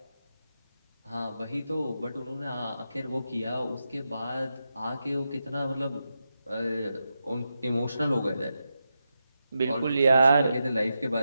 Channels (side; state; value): both; inverted; correlation -0.88